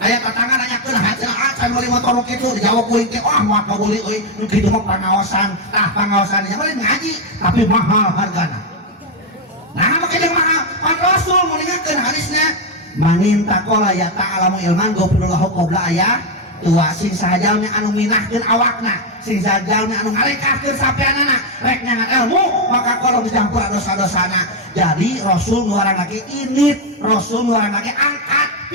aya tetangga nanyakeun haceunah can meuli motor kitu dijawab kuing teh moal kabeli euy nu kitu mah pengawasan pengawasan nya mah ngaji tapi mahal hargana nah make jeung mahal pan Rasul mun ingatkeun hadisna manin taqala ya ta'alamu ilman gofirullahu qabla aya tua sing sahajalmi anu minahkeun awakna sing sahajalmi anu ngalekahkeun sapeanana rek nyangat ilmu maka kalau dicampur dosa-dosana jadi Rasul nuaran lagi init Rasul nuaran lagi angkat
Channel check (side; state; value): both; normal; correlation 0.05